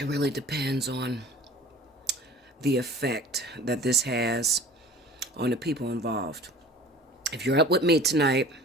really depends on the effect that this has on the people involved. If you're up with me tonight,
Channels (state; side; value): normal; both; correlation 0.44